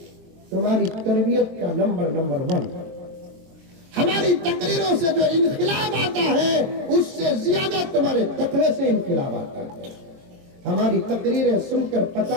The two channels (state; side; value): late; left; 22 ms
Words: तुम्हारी तरबियत का नंबर 1। हमारी तकरीरों से जो इनकलाब आता है उससे ज्यादा तुम्हारे तकवे से इनकलाब आता है। हमारी तकरीरें सुनकर